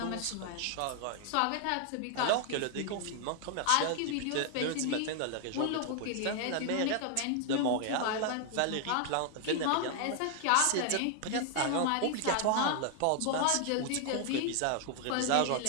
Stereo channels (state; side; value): different; both; correlation 0.00